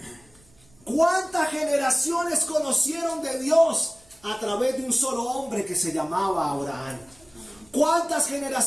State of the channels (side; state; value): right; noise; rumble, 29 dB below the sound